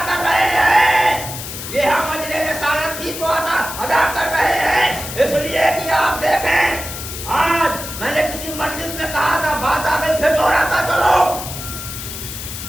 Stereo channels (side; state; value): left; noise; hiss, 9 dB below the sound